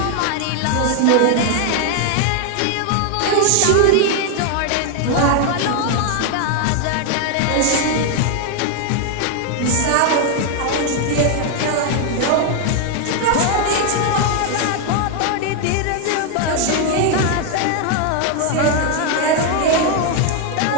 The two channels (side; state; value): both; different; correlation 0.00